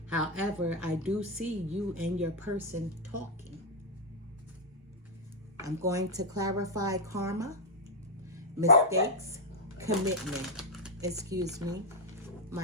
However, I do see you and your person talking. I'm going to clarify karma, mistakes, commitment. Excuse me.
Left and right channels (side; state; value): both; normal; correlation 0.00